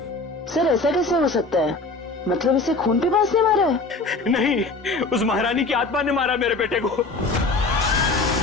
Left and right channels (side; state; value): right; quieter; 3.5 dB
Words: सर ऐसा कैसे हो सकता है? मतलब इसे खून पिपास ने मारा है? नहीं, उस महारानी की आत्मा ने मारा मेरे बेटे को।